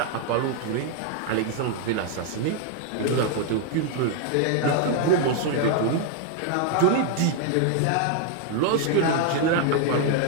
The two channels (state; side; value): different; both; correlation 0.00